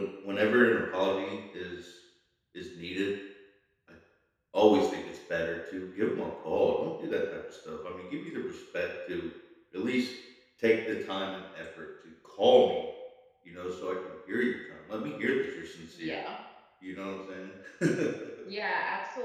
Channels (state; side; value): identical; both; correlation 1.00